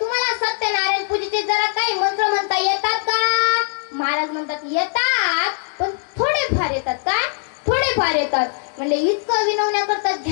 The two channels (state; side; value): silent; right; digital silence